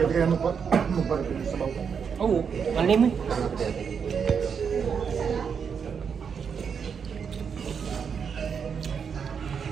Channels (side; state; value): left; quieter; 6.7 dB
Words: kaya magparapit sa bawang. Oo, alin mo.